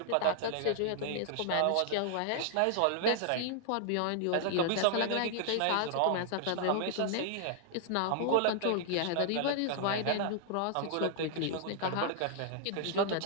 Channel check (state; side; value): different; both; correlation -0.01